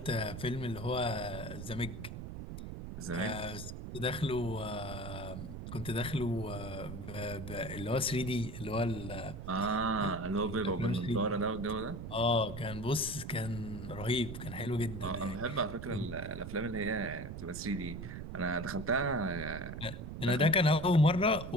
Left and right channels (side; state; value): right; noise; rumble, 8 dB below the sound